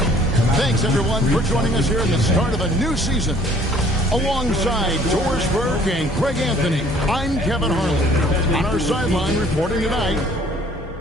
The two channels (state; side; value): normal; both; correlation 0.57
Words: Thanks, everyone, for joining us here at the start of a new season. Alongside Doris Burke and Greg Anthony, I'm Kevin Harlan. On our sideline reporting tonight,